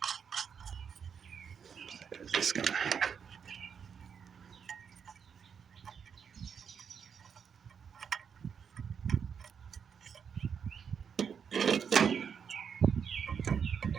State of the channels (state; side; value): quieter; left; 7.0 dB